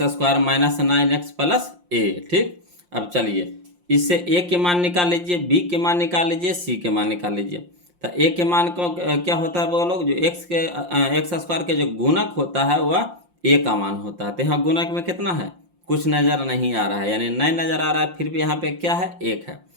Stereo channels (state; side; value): late; left; 5.7 ms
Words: square minus 9x plus A. ठीक, अब चलिए इससे ए के मान निकाल लीजिए, बी के मान निकाल लीजिए, सी के मान निकाल लीजिए। तो ए के मान को क्या होता है बोलो, जो एक्स स्क्वायर के जो गुणक होता है वह ए का मान होता है। तो यहाँ गुणक में कितना है? कुछ नज़र नहीं आ रहा है, यानी नहीं नज़र आ रहा है, फिर भी यहाँ पे क्या है? 1 है।